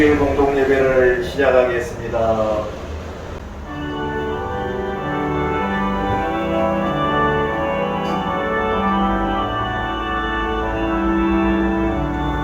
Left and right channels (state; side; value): identical; both; correlation 1.00